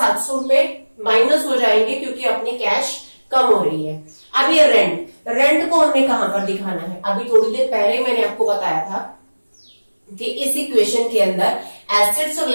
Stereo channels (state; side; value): inverted; both; correlation -1.00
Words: रुपए माइनस हो जाएंगे क्योंकि अपनी कैश कम हो रही है। अब ये रेंट को हमने कहां पर दिखाना है, अभी थोड़ी देर पहले मैंने आपको बताया था कि इस इक्वेशन के अंदर एसेट्स और